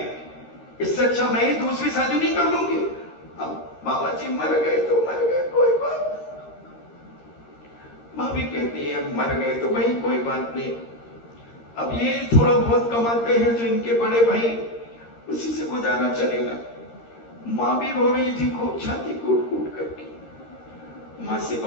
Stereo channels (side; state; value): right; late; 13 ms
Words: इससे अच्छा मैं ही दूसरी शादी नहीं कर लूंगी। अब बाबा जी मर गए तो मर गए, कोई बात नहीं। भाभी कहती है मर गए तो भाई कोई बात नहीं, अब ये थोड़ा बहुत कमाते हैं जो इनके बड़े भाई, उसी से गुजारा चलेगा। माँ भी रो रही थी खूब, छाती कूट कूट करके। माँ से